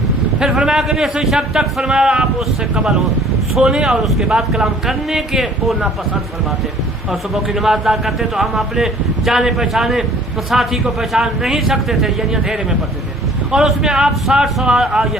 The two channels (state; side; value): normal; both; correlation 0.53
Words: پھر فرمایا کہ نصف شب تک فرمایا آپ اس سے قبل ہو سونے اور اس کے بعد کلام کرنے کے کو ناپسند فرماتے، اور صبح کی نماز ادا کرتے تو ہم اپنے جانے پہچانے ساتھی کو پہچان نہیں سکتے تھے، یعنی اندھیرے میں پڑھتے تھے، اور اس میں آپ